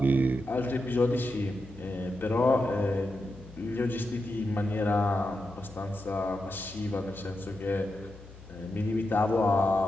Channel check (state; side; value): noise; left; hum, 18 dB below the sound